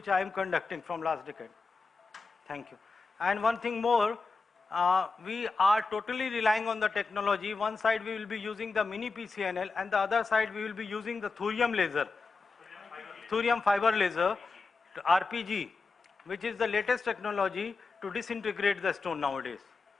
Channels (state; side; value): quieter; right; 4.2 dB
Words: I am conducting from last decade. Thank you. And one thing more, we are totally relying on the technology. One side we will be using the mini PCNL and the other side we will be using the thorium laser, thorium fiber laser, RPG, which is the latest technology to disintegrate the stone nowadays.